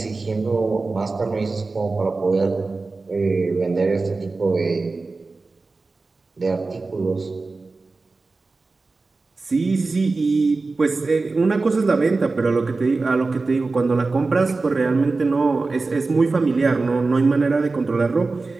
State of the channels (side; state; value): left; quieter; 3.7 dB